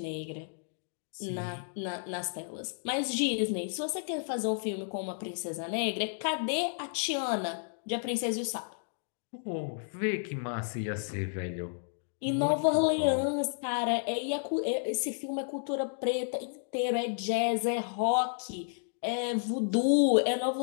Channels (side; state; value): right; silent; digital silence